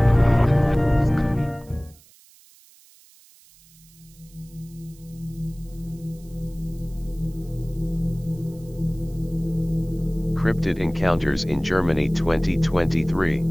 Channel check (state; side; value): noise; right; hiss, 26 dB below the sound